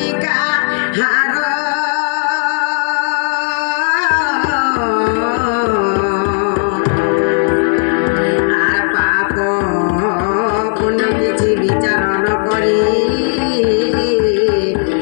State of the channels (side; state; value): right; silent; 62 dB below the other